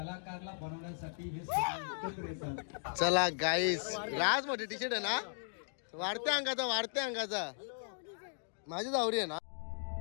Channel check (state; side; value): silent; right; digital silence